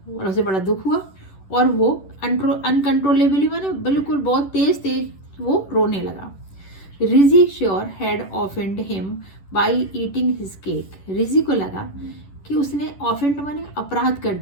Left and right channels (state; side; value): late; right; 10 ms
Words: और उसे बड़ा दुख हुआ, और वो अनकंट्रोलेबली माने बिल्कुल बहुत तेज वो रोने लगा। Rizzy sure had offend him by eating his cake, Rizzy को लगा कि उसने ऑफेंड माने अपराध कर